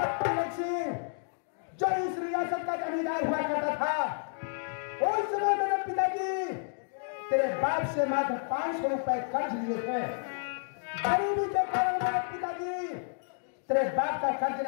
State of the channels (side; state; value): right; silent; digital silence